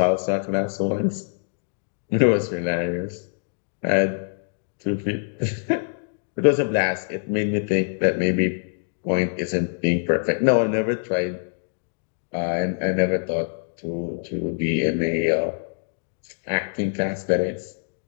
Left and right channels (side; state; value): right; silent; digital silence